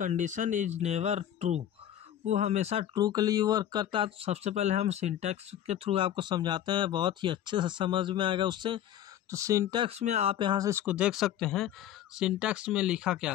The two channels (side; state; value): right; quieter; 11.1 dB